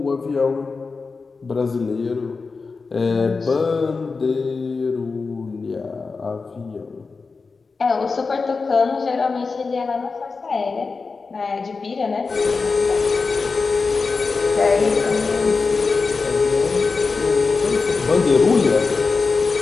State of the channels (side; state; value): right; quieter; 4.4 dB